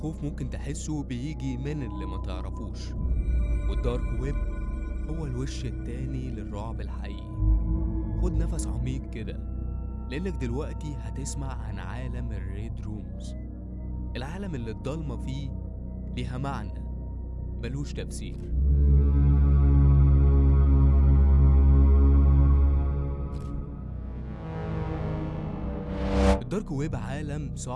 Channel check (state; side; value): identical; both; correlation 1.00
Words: ممكن تحسه بيجي من اللي ما تعرفوش. والدارك ويب هو الوش التاني للرعب الحقيقي. خد نفس عميق كده، لأنك دلوقتي هتسمع عن عالم الريد رومز، العالم اللي الضلمة فيه ليها معنى ملوش تفسير. الدارك ويب عالم